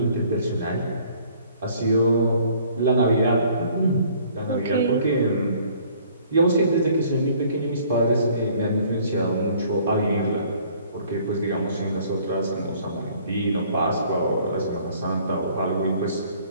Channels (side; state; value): both; inverted; correlation -0.57